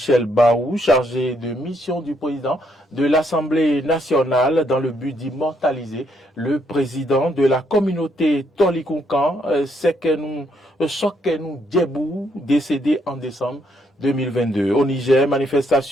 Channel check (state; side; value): normal; both; correlation 0.73